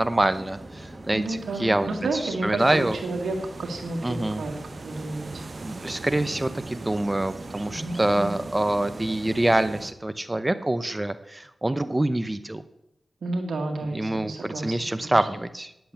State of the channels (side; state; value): both; normal; correlation 0.98